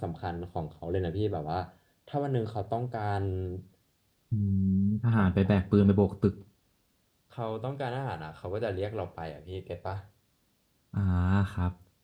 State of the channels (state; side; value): identical; both; correlation 1.00